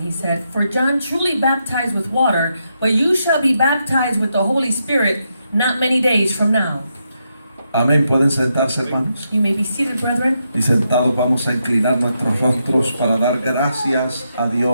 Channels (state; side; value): inverted; both; correlation -0.82